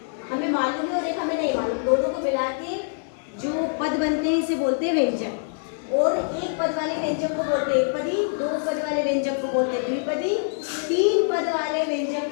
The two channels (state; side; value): silent; right; digital silence